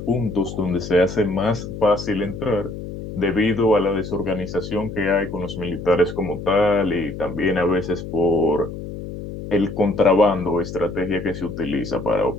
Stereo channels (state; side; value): noise; left; hum, 9 dB below the sound